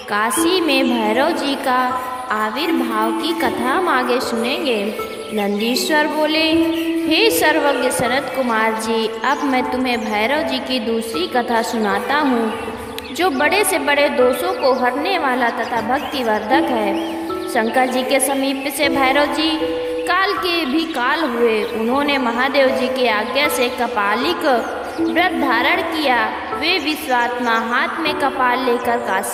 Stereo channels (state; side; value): identical; both; correlation 1.00